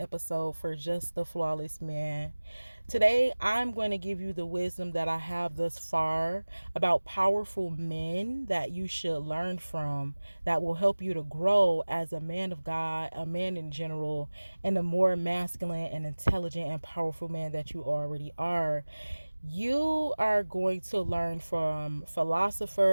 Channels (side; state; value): both; inverted; correlation -1.00